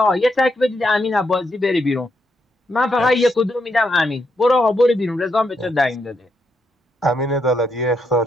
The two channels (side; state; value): both; normal; correlation 0.79